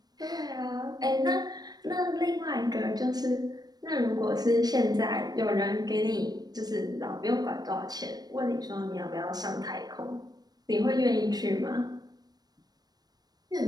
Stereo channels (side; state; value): left; late; 0.19 ms